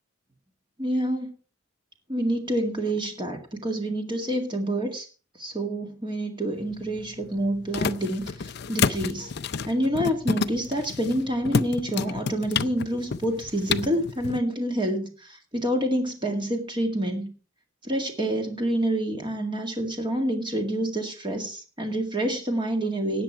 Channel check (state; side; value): normal; both; correlation 0.63